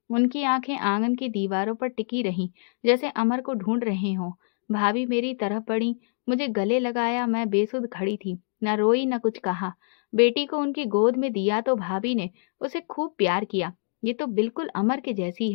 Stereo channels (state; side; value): silent; right; digital silence